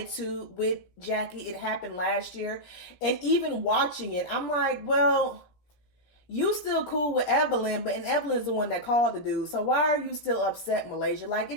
with Jackie. It happened last year, and even watching it, I'm like, well, you still cool with Evelyn, and Evelyn's the one that called the dude, so why are you still upset, Malaysia? Like,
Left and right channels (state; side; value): late; right; 16 ms